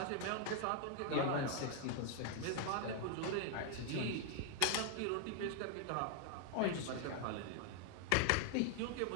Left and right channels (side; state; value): both; different; correlation 0.00